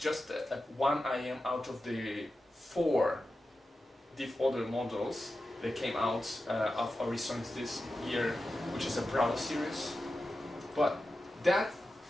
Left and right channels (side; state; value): both; normal; correlation 0.92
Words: a one IEM out of the 4 other models that came out of Aurisonics this year, which is a Bravo series. But that